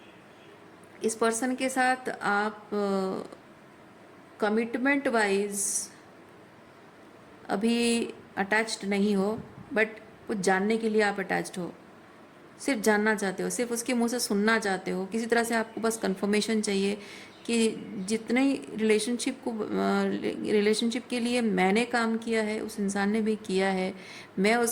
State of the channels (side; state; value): both; identical; correlation 1.00